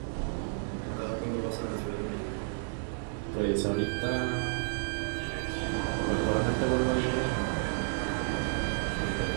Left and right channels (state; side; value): silent; left; digital silence